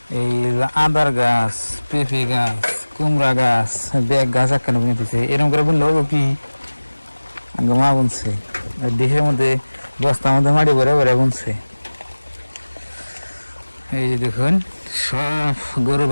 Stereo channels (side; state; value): both; inverted; correlation -1.00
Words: এই আদার গাছ, পেঁপে গাছ, কুমড়া গাছ, ব্যাগ গাছ একখানে বুনে দিচ্ছে। এরকম করে বুনলে হবো কি, আঙ্গ মা বুনছে দেহের মধ্যে, বস্তার মধ্যে মাটি ভরে ভরে বুনছে। এই যে দেখুন সব গরু